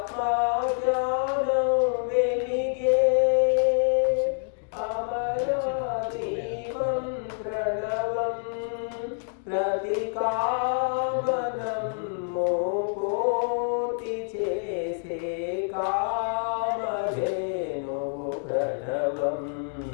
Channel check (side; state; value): right; silent; digital silence